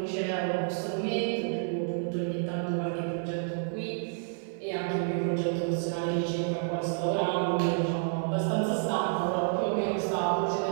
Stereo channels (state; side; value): silent; left; 58 dB below the other